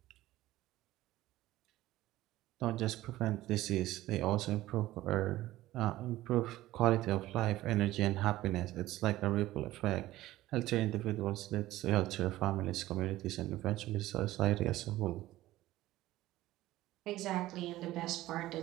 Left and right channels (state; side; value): quieter; left; 16.0 dB